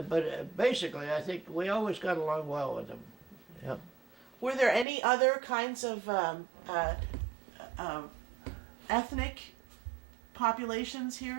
But basically, I think we always got along well with them. Yeah. Were there any other kinds of ethnic populations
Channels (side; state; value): left; drops out; at 4.9 s